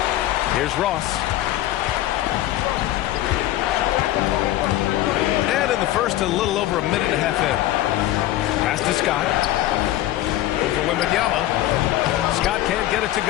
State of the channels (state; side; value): quieter; right; 14.6 dB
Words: Here's Ross. And in the first, a little over a minute and a half in. Pass to Scott. Over Wembanyama. Scott can't get it to